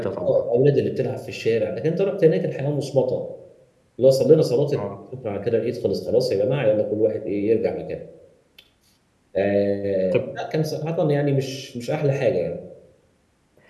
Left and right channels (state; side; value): identical; both; correlation 1.00